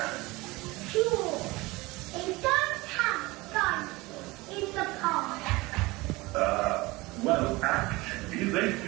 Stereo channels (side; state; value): left; quieter; 22.0 dB